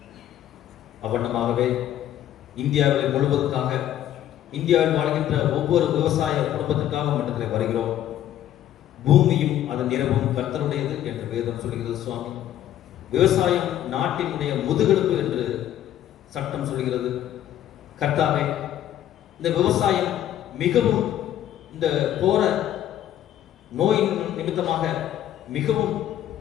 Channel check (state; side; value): quieter; right; 11.8 dB